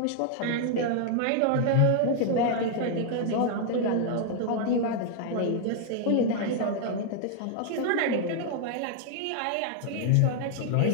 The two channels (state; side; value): different; both; correlation 0.00